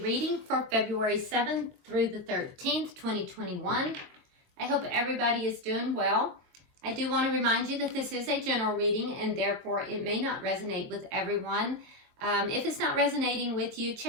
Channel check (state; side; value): late; left; 23 ms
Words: reading for February 7th through the 13th, 2021. I hope everybody is doing well. I do want to remind you that this is a general reading and therefore it may not resonate with everyone. If it's not resonating with you,